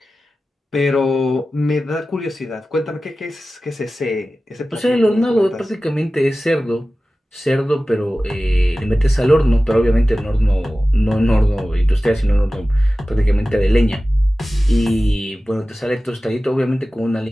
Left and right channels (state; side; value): normal; both; correlation 0.96